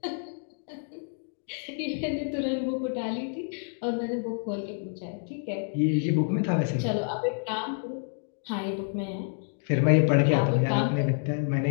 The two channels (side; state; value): right; silent; 59 dB below the other